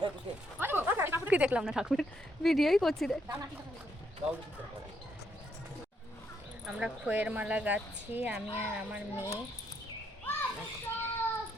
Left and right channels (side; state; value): both; normal; correlation 0.75